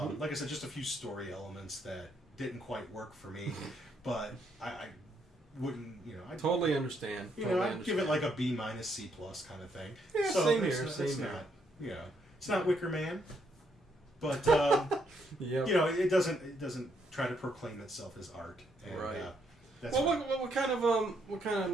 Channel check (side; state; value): both; normal; correlation 0.74